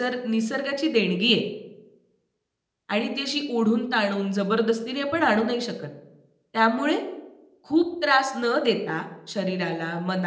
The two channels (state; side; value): identical; both; correlation 1.00